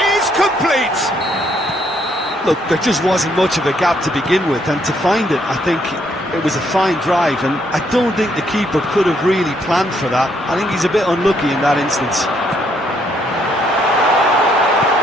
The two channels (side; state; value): both; normal; correlation 0.71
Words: Look, there just wasn't much of a gap to begin with, and to find it, I think it was a fine drive, and I don't think the keeper could have really planned for that. I think he's a bit unlucky in that instance.